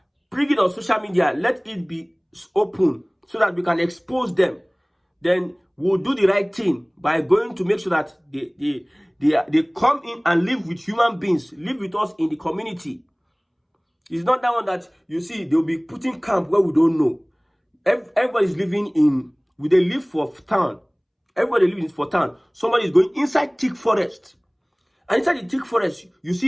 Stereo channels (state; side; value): identical; both; correlation 1.00